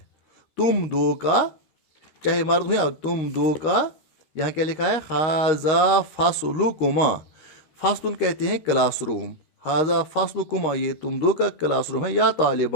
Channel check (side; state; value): right; late; 13 ms